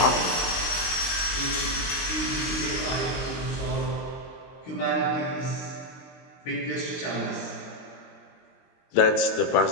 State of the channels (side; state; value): right; late; 22 ms